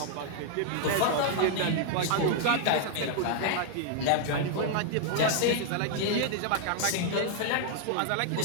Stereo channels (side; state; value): both; different; correlation -0.01